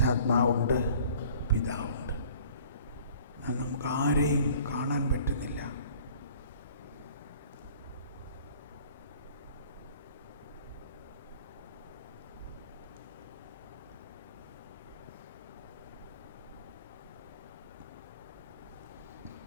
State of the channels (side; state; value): both; inverted; correlation -0.51